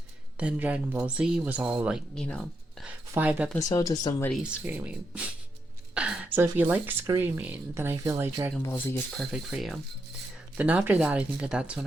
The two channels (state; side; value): normal; both; correlation 0.82